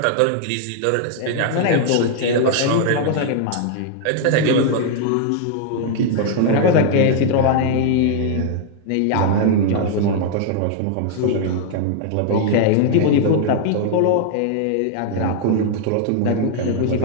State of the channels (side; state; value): both; different; correlation 0.00